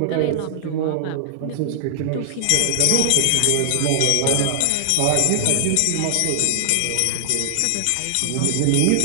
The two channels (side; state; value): both; different; correlation 0.00